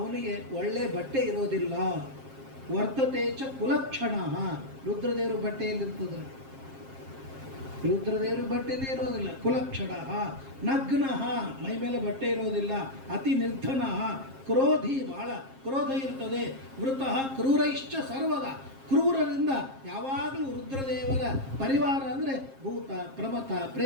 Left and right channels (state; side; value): late; left; 7.5 ms